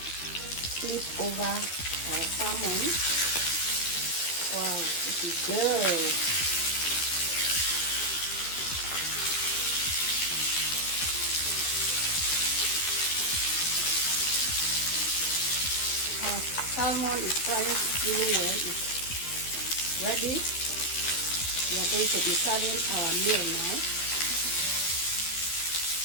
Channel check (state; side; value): late; right; 12 ms